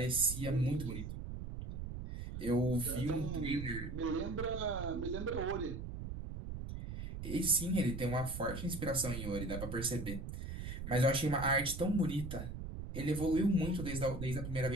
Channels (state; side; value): noise; right; rumble, 7 dB below the sound